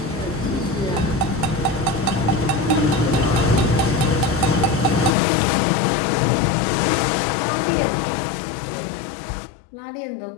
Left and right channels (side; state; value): right; drops out; at 5.2 s